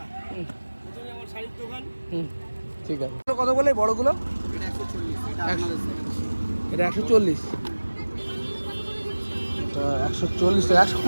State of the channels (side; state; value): both; inverted; correlation -1.00